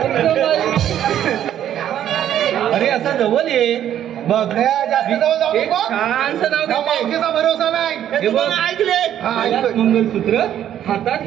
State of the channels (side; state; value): left; quieter; 10.8 dB